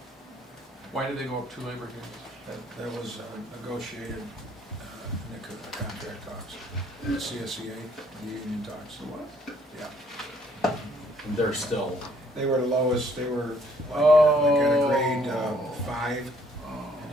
Why did they go up 2 labor grades? That was negotiated in the contract talks, the CSEA, the union talks. Yeah, And they're still, they were the lowest, they were like at a grade 5, and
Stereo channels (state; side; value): normal; both; correlation 0.64